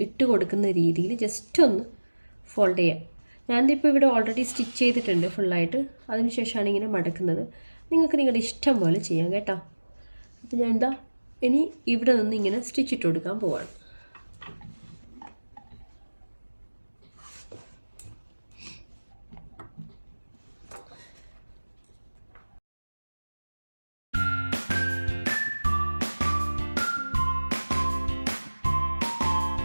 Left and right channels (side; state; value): both; inverted; correlation -1.00